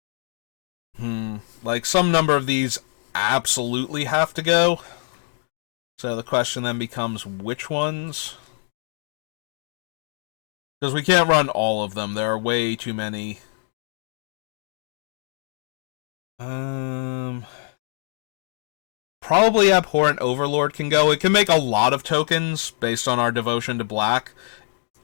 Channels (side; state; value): right; silent; digital silence